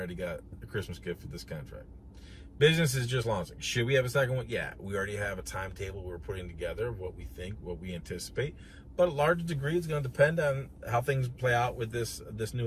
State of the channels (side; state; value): both; identical; correlation 1.00